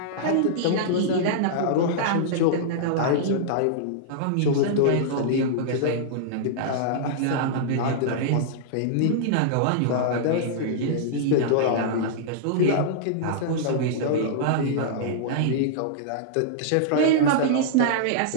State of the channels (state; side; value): different; both; correlation -0.02